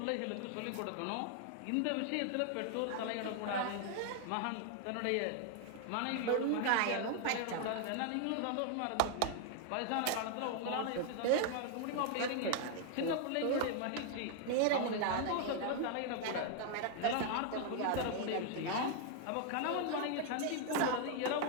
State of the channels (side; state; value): both; different; correlation 0.00